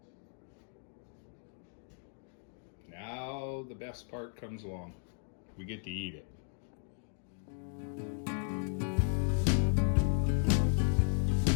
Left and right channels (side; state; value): right; silent; 54 dB below the other